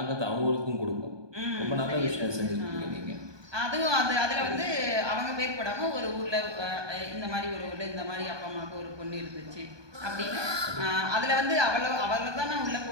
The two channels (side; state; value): left; late; 1.2 ms